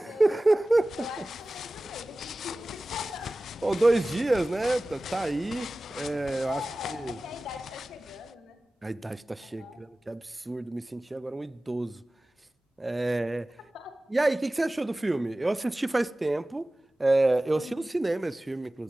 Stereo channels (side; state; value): both; normal; correlation 0.97